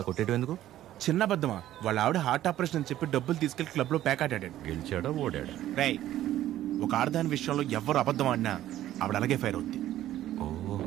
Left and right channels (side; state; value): left; quieter; 13.2 dB